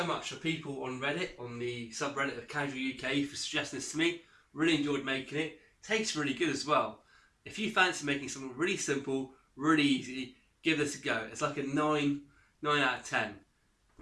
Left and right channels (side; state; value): both; identical; correlation 1.00